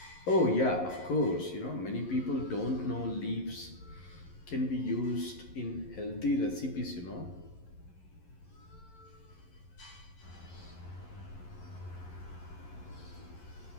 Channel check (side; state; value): right; late; 11 ms